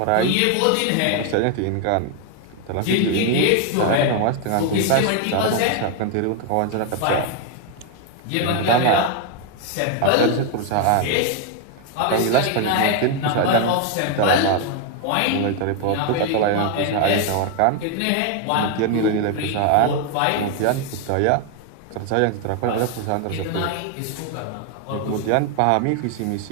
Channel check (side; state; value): both; different; correlation 0.00